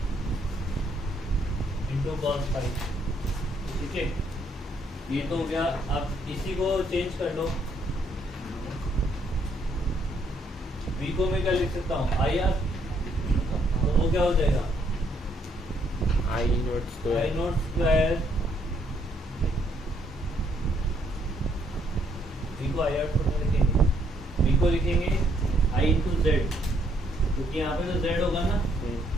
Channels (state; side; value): normal; both; correlation 0.70